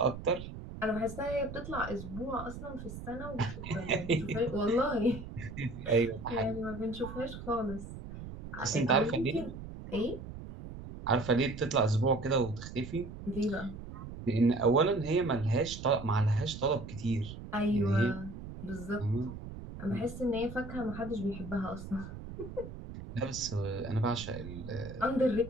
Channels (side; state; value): right; noise; rumble, 11 dB below the sound